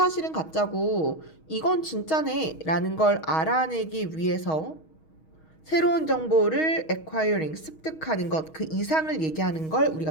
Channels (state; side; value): late; right; 6.3 ms